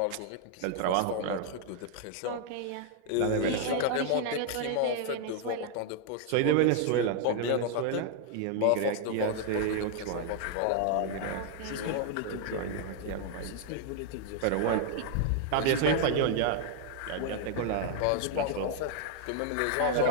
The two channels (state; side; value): different; both; correlation 0.00